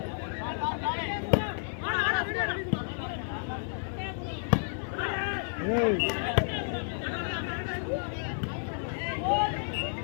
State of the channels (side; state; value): right; silent; digital silence